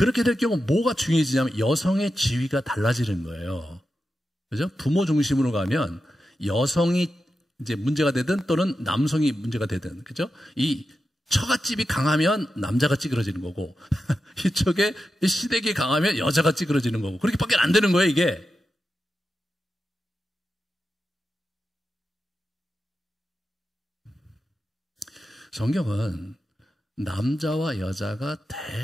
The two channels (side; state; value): both; normal; correlation 0.90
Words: 될 경우 뭐가 중요해지냐면 여성의 지위가 달라지는 거예요. 그죠? 부모 중심으로 가면 여성이 이제 문제가 되든 또는 남성이 문제가 되든, 그죠? 이 처갓집이 강하면 남자가 찌그러지는 거고, 이쪽에 시댁이 강하면 여자가 찌그러지는 거고, 그렇게밖에 안 되는 거예요, 이게. 성경은 남자와 여자가